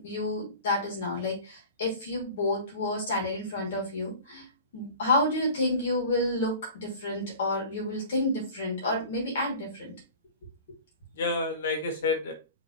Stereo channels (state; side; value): inverted; both; correlation -0.40